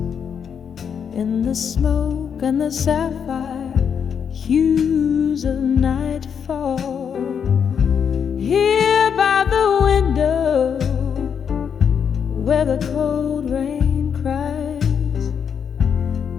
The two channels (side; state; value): right; quieter; 7.4 dB